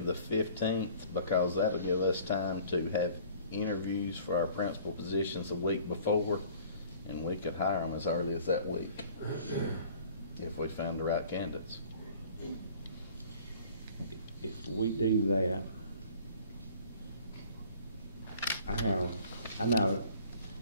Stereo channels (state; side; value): inverted; both; correlation -0.50